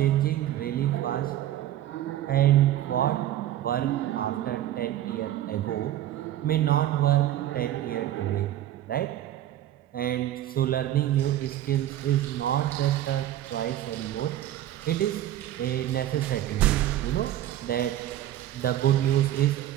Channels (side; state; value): left; quieter; 12.8 dB